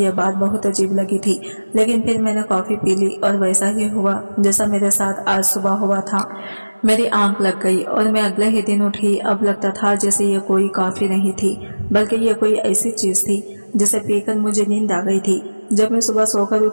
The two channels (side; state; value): both; inverted; correlation -1.00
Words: यह बात बहुत अजीब लगी थी, लेकिन फिर मैंने कॉफी पी ली और वैसा ही हुआ जैसा मेरे साथ आज सुबह हुआ था। मेरी आंख लग गई और मैं अगले ही दिन उठी। अब लगता था जैसे ये कोई कॉफी नहीं थी, बल्कि ये कोई ऐसी चीज थी जिसे पीकर मुझे नींद आ गई थी। जब मैं सुबह सोकर